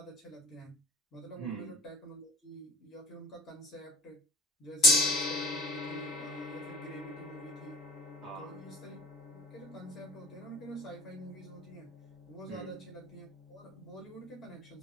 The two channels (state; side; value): normal; both; correlation 0.50